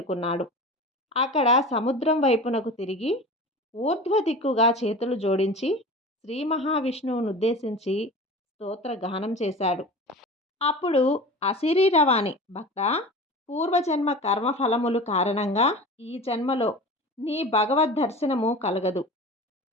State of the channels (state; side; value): normal; both; correlation 0.34